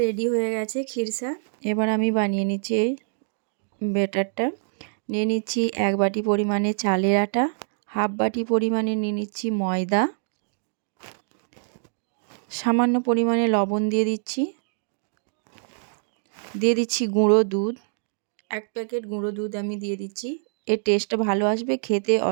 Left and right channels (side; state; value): left; silent; digital silence